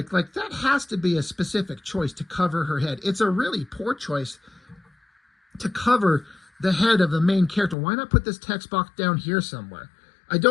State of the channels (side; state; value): right; drops out; at 7.8 s